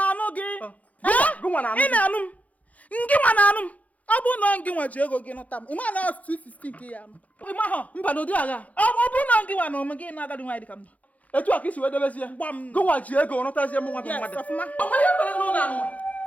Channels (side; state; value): right; late; 0.070 ms